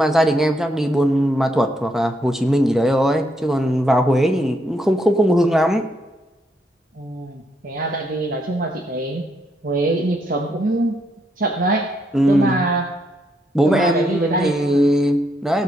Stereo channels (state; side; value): normal; both; correlation 0.76